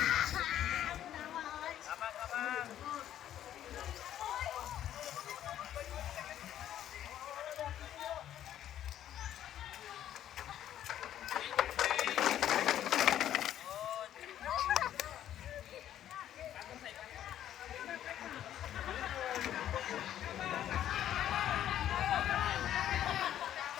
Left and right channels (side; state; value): right; quieter; 11.4 dB